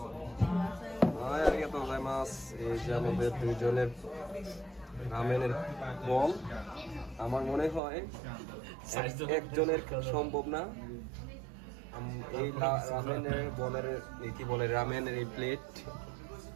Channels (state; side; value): drops out; left; at 7.8 s